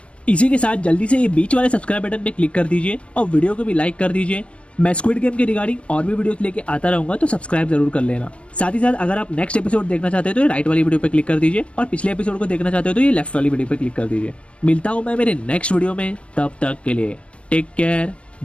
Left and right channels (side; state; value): right; late; 0.060 ms